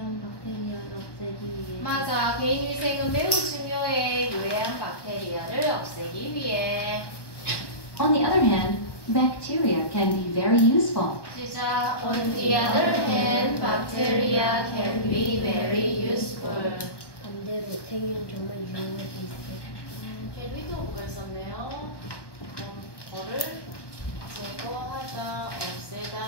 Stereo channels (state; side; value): late; right; 1.2 ms